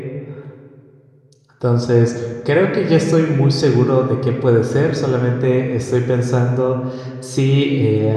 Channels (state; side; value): identical; both; correlation 1.00